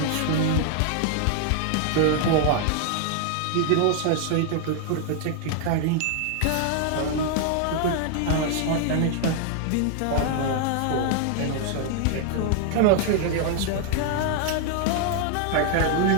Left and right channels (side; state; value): both; different; correlation 0.00